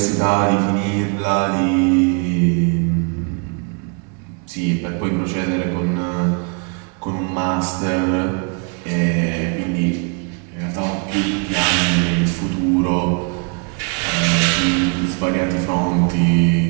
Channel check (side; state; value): left; quieter; 37.0 dB